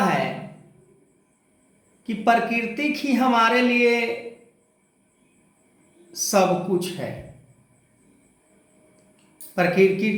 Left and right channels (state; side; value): identical; both; correlation 1.00